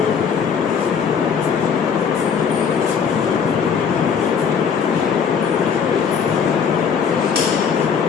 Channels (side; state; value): right; quieter; 6.7 dB